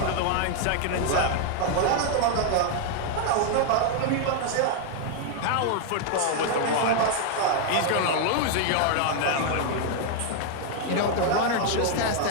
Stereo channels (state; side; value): different; both; correlation 0.00